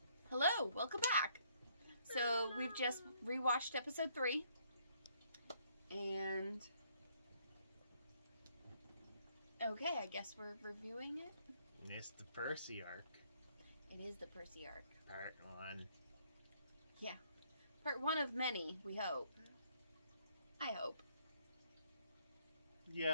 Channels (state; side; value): inverted; both; correlation -0.67